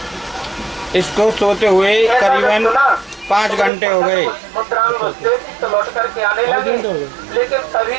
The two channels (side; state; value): left; drops out; at 3.7 s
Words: इसको सोते हुए करीबन 5 घंटे हो गए। तो लौट करके आने लगे, लेकिन तभी